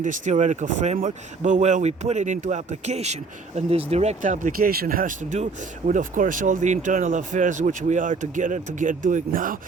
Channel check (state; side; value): quieter; left; 4.3 dB